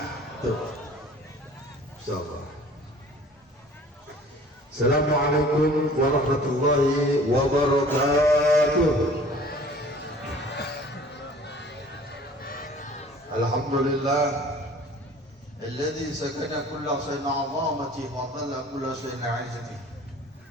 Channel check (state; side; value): normal; both; correlation 0.49